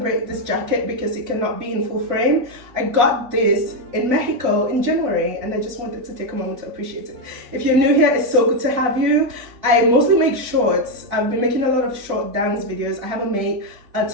this jacket because it cannot be in full frame. I got this in Mexico in January and I just wanted to take a moment to appreciate it. If you're new here, it's so good to have you. I mostly make shorts. I've been making a lot of short dance videos. I haven't made a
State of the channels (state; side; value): late; left; 3.5 ms